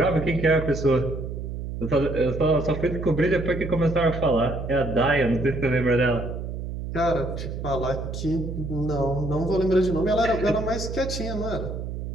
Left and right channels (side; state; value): right; noise; hum, 6 dB below the sound